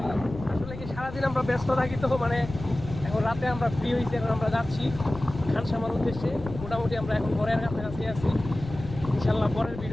আসলে কি সারাদিন আমরা ব্যস্ত থাকি, তো মানে এখন রাতে আমরা ফ্রি হয়েছি, এখন আমরা যাচ্ছি খানসামার উদ্দেশ্যে। মোটামুটি আমরা এখন ঘরের কাছাকাছি আছি। ইনশাল্লাহ পরের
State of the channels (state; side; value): noise; left; rumble, 11 dB below the sound